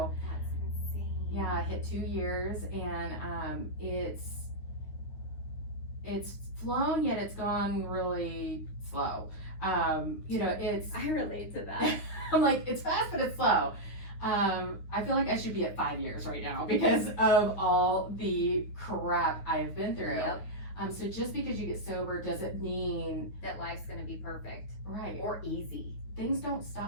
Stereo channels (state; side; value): late; right; 9.5 ms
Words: That's insane. yeah, I hit 2 years, and it's flown, yet it's gone really slow. You know, it's I relate to that. I'm like, it's fast, but it's slow. I feel like I should be at 5 years right now because of all the crap I have been through. Yep. So just because you get sober doesn't mean That life's gonna be perfect right. or easy. Things don't